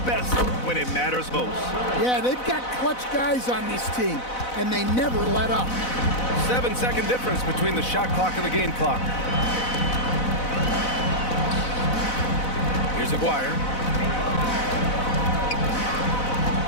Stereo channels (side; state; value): right; late; 4.0 ms